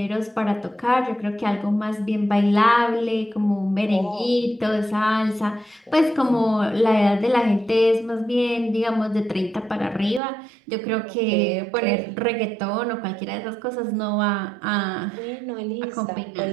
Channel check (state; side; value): drops out; left; at 10.2 s